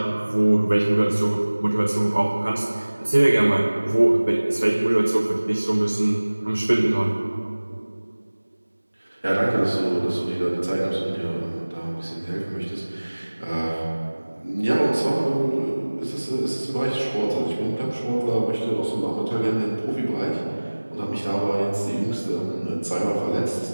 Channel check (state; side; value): inverted; both; correlation -1.00